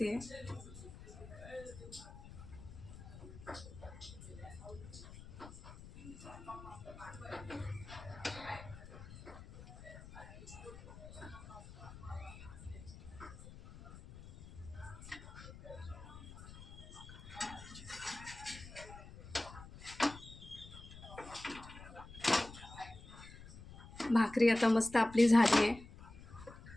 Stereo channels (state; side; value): noise; left; rumble, 15 dB below the sound